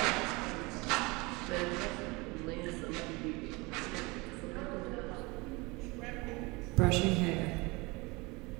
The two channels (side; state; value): left; quieter; 25.2 dB